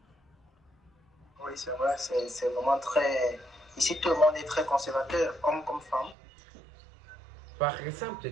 Oui, c'est vrai, c'est vraiment très... Ici, tout le monde est très conservateur, homme comme femme. Par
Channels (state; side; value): drops out; left; at 6.2 s